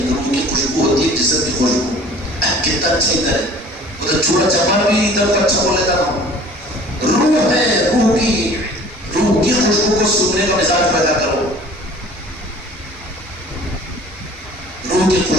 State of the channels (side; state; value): both; normal; correlation 0.48